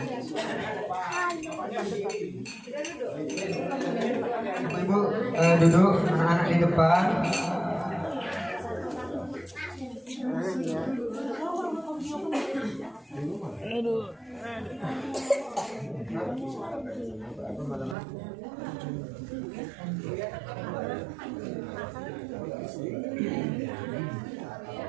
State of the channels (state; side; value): drops out; left; at 17.9 s